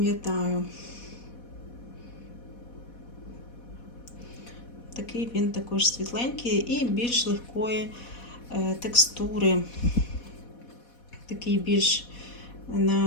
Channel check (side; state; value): right; late; 4.1 ms